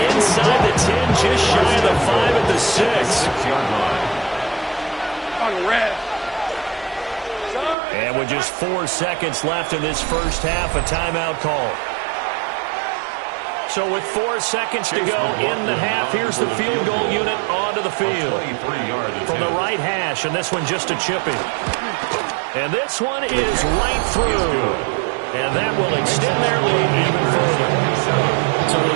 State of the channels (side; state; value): left; drops out; at 7.8 s